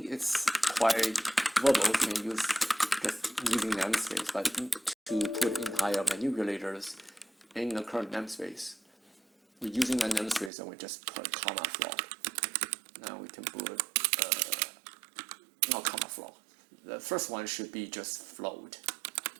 it's quite verbal, you can use just using namespace, but to put entire manipulators in the current namespace, we're using that namespace and we just put comma float. Now we can put float. The first one should be just float.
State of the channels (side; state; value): left; drops out; at 10.5 s